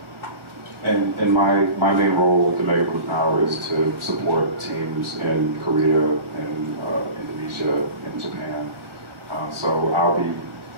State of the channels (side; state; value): left; late; 1.4 ms